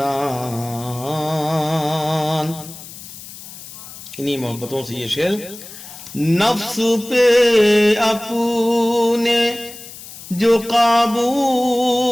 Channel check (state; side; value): noise; left; hiss, 15 dB below the sound